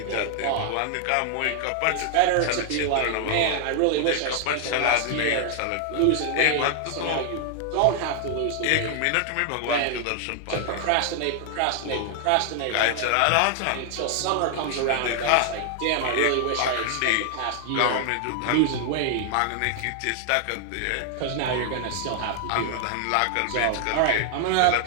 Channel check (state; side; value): different; both; correlation 0.00